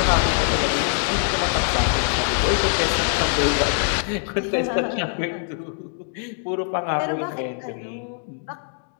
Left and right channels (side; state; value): right; silent; 63 dB below the other